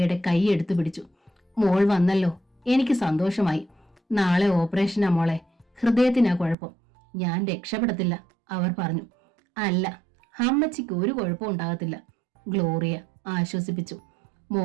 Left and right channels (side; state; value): left; drops out; at 6.6 s